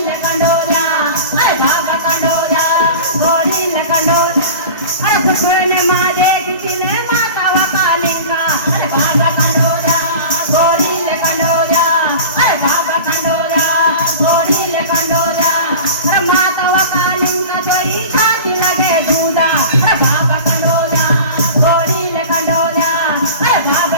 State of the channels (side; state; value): both; inverted; correlation -0.36